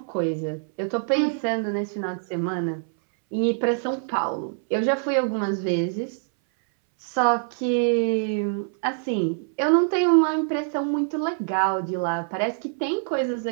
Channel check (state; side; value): silent; left; 62 dB below the other